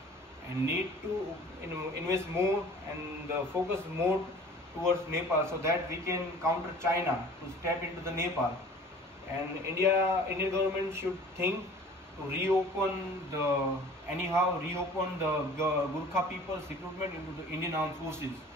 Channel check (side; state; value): both; normal; correlation 0.46